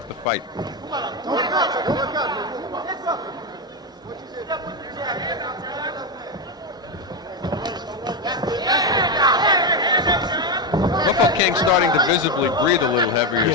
the fight. Mofokeng starting to visibly breathe a little heavier,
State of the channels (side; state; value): both; normal; correlation 0.09